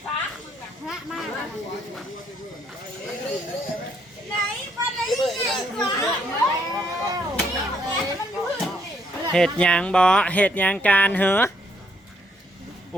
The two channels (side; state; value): both; normal; correlation 0.71